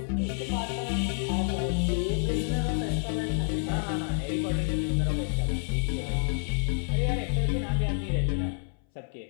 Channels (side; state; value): right; silent; 59 dB below the other